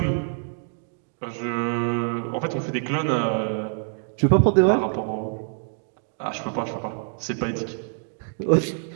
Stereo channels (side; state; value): left; silent; 56 dB below the other